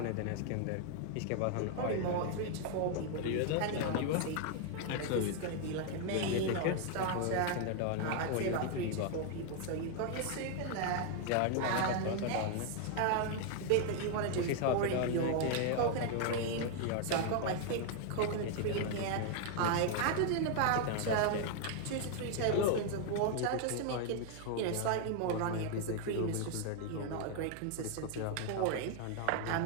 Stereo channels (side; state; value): both; different; correlation 0.00